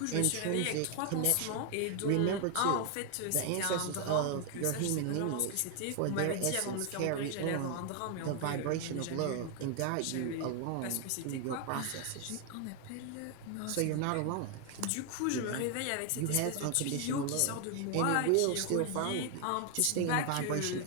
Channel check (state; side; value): different; both; correlation 0.00